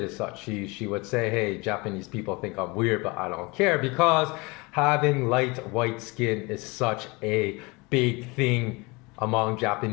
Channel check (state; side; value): quieter; right; 26.0 dB